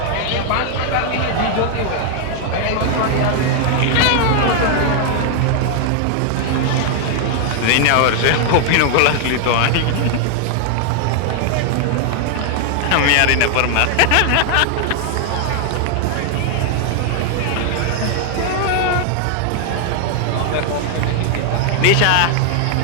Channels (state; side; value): different; both; correlation 0.00